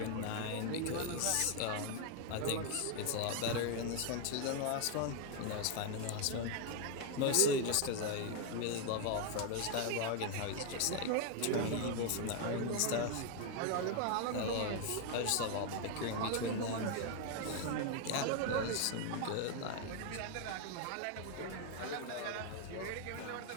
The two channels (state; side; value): different; both; correlation 0.01